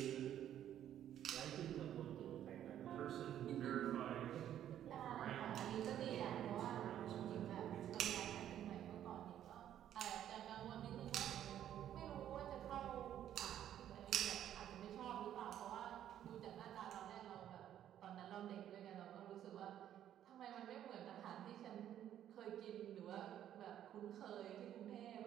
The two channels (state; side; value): quieter; left; 10.9 dB